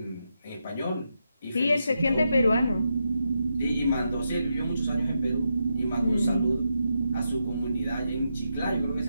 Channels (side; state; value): both; inverted; correlation -0.84